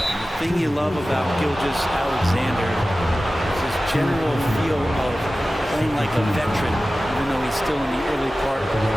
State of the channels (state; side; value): normal; both; correlation 0.96